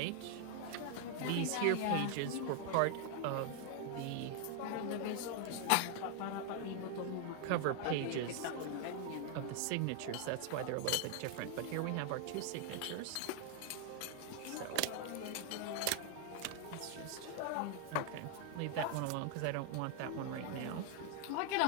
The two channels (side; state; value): both; different; correlation 0.00